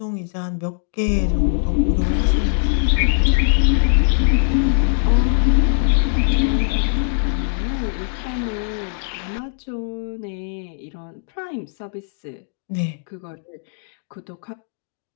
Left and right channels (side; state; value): right; silent; digital silence